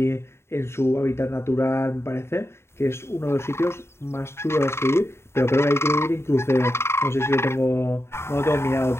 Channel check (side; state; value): right; late; 0.12 ms